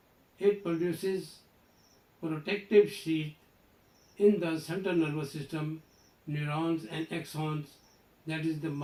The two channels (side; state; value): both; identical; correlation 1.00